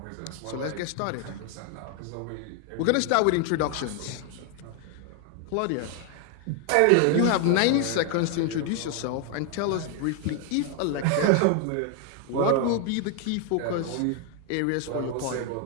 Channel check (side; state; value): both; different; correlation 0.01